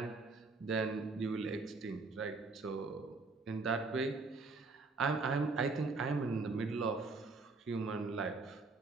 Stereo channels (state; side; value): quieter; left; 3.9 dB